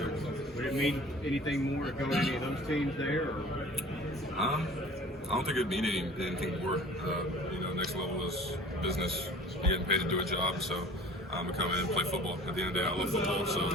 Would it mean anything more to go to any of those teams there? Or? I don't think it'd mean anything more. You know, next level is business. You're getting paid to do a job, so I'm gonna come in and play football. At the end of the day, I love football, so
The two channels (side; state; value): both; normal; correlation 0.45